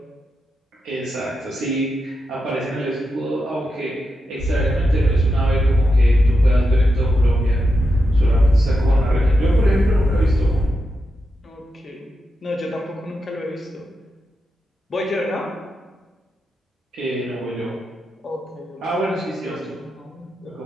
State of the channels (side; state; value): both; normal; correlation 0.87